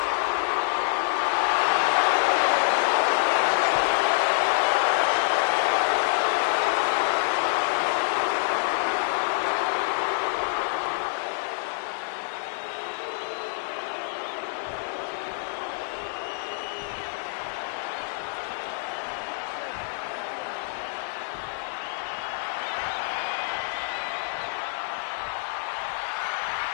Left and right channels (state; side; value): silent; right; digital silence